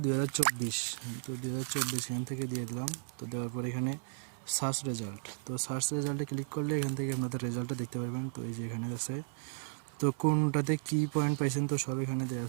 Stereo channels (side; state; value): left; silent; 55 dB below the other